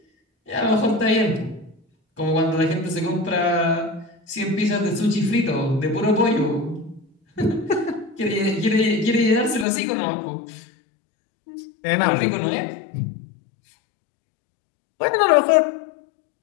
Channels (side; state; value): right; drops out; at 9.7 s